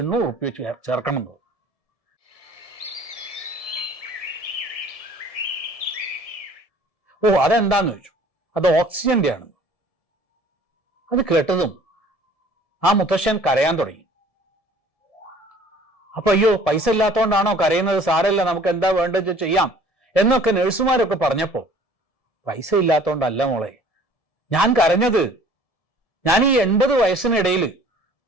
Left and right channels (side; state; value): right; late; 1.7 ms